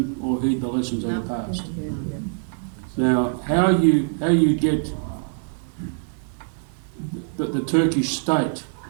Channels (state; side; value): silent; left; 62 dB below the other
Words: or heed the lessons of the past. Now, how you get the Turkish state